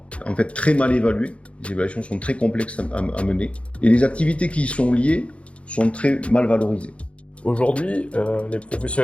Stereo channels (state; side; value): late; right; 0.061 ms